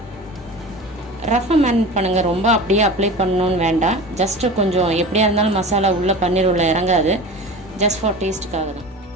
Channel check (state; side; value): normal; both; correlation 0.34